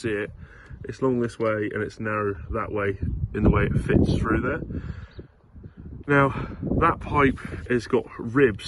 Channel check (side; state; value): both; identical; correlation 1.00